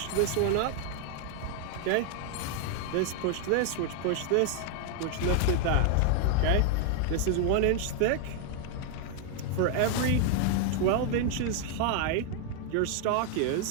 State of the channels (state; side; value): different; both; correlation 0.00